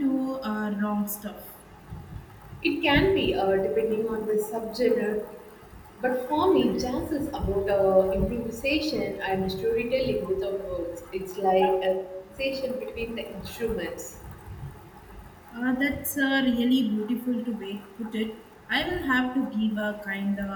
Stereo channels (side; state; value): both; identical; correlation 1.00